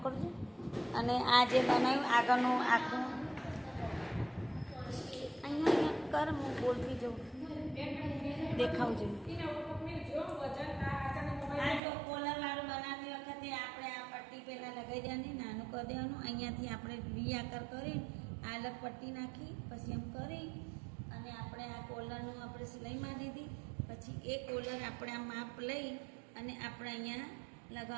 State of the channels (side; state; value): left; drops out; at 11.8 s